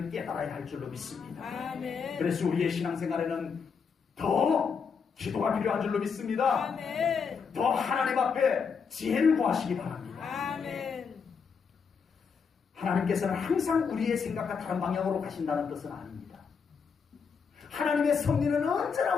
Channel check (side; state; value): right; quieter; 6.0 dB